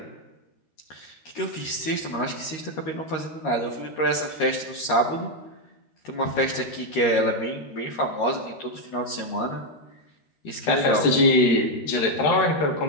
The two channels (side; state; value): right; late; 13 ms